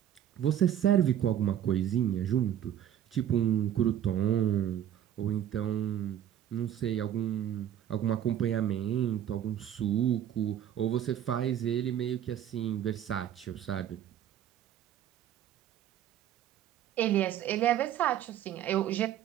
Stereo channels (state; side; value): quieter; left; 10.6 dB